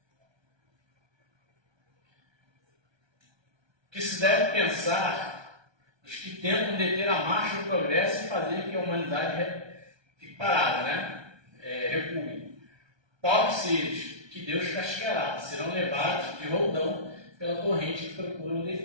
que se deve pensar os que tentam deter a marcha do progresso e fazer que a humanidade fique parada, né? Recue. Pobres seres, que Deus castigará, serão levados de roldão pela torrente que procuram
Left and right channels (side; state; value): left; late; 1.2 ms